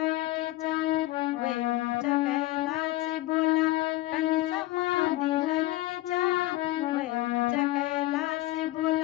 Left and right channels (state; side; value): quieter; right; 17.5 dB